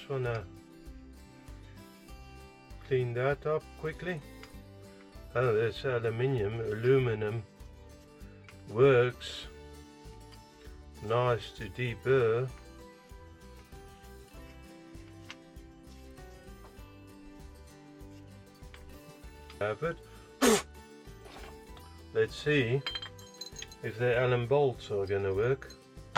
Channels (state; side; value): identical; both; correlation 1.00